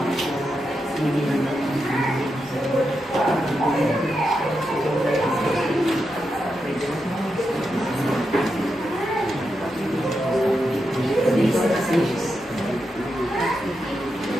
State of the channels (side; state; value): both; normal; correlation 0.86